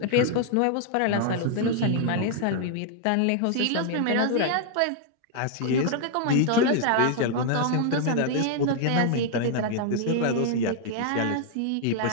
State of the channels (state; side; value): different; both; correlation 0.00